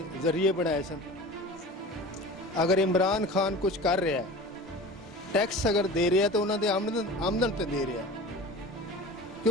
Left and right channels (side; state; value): both; normal; correlation 0.36